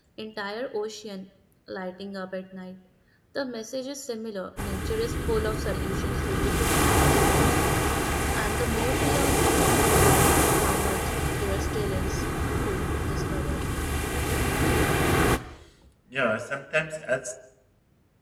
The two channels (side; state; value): both; identical; correlation 1.00